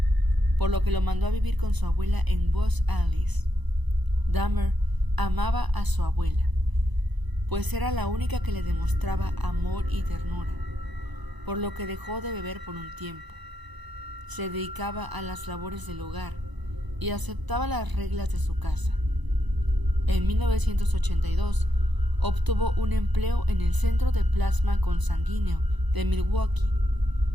por lo que lo mandó a vivir con su abuela en Los Ángeles. Dahmer amaba a su abuela, pues era la única que le demostraba amor y ternura, por lo que dejó de beber por un tiempo. Se dedicaba a las labores del hogar y aceptaba las reglas de su casa. En 1982, obtuvo un empleo en el Centro de Plasma Consanguíneo de Milwaukee,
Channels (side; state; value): left; late; 1.0 ms